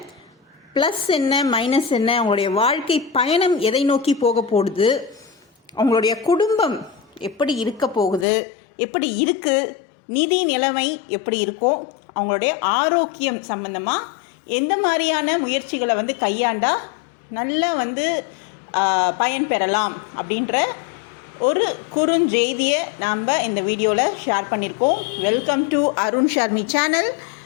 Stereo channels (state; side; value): drops out; right; at 8.2 s